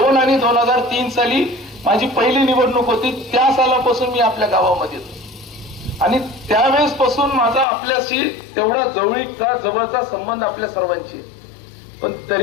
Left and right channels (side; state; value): right; drops out; at 7.7 s